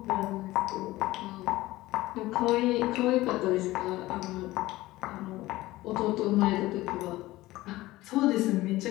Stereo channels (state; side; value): quieter; right; 17.9 dB